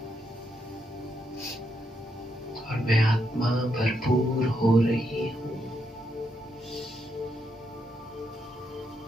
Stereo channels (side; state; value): both; normal; correlation 0.80